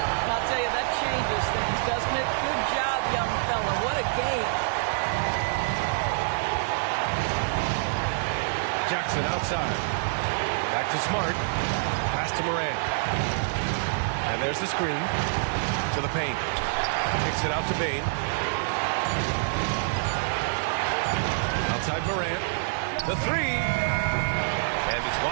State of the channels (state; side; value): silent; left; 60 dB below the other